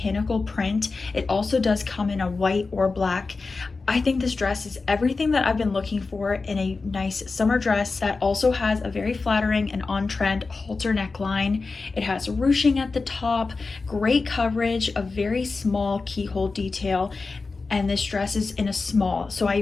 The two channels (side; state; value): right; quieter; 4.1 dB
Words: print. It also does come in a white or black. I think this dress is everything that I've been looking for in a nice summer dress that also has a very flattering and on-trend halter neckline. It has ruching at the top, great coverage, a very small keyhole detail, and this dress is in a small, so